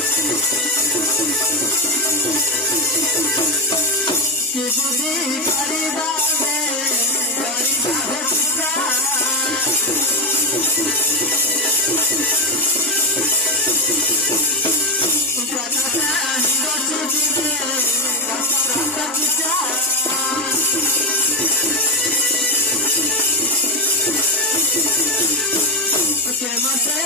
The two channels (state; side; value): normal; both; correlation 0.09